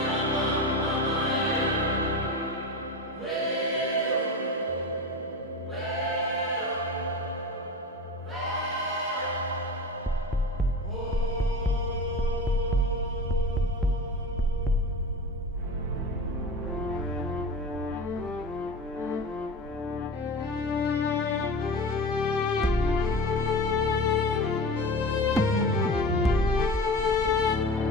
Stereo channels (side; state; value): both; normal; correlation 0.30